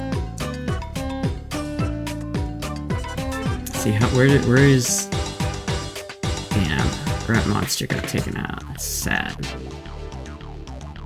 See how where is? Damn, Grunt Monster got taken out. That's sad.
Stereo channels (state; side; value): identical; both; correlation 1.00